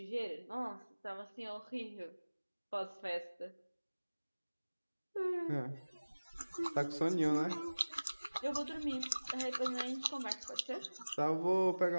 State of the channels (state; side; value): inverted; both; correlation -1.00